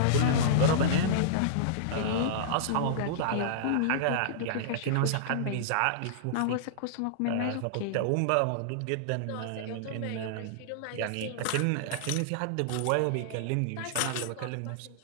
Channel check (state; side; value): different; both; correlation -0.02